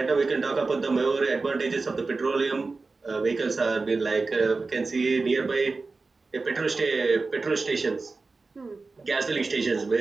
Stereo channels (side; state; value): left; quieter; 3.9 dB